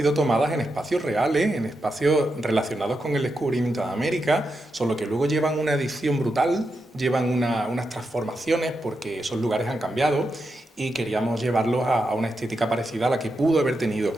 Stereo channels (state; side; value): normal; both; correlation 0.86